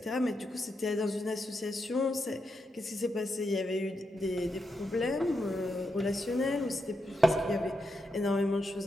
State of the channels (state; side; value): normal; both; correlation 0.84